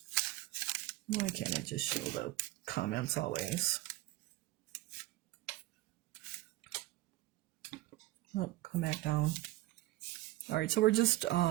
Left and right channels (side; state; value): left; quieter; 17.5 dB